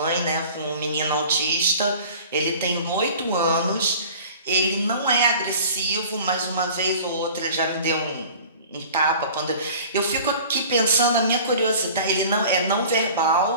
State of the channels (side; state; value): both; inverted; correlation -0.44